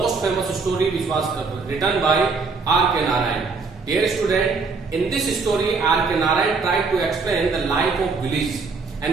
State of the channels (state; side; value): quieter; left; 4.5 dB